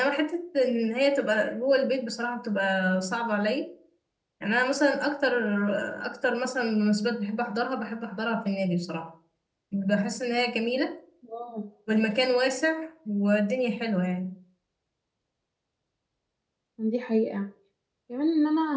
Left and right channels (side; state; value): both; identical; correlation 1.00